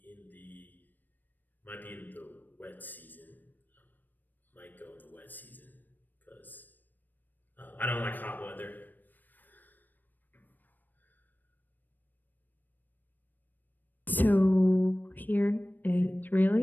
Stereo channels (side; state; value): right; late; 0.089 ms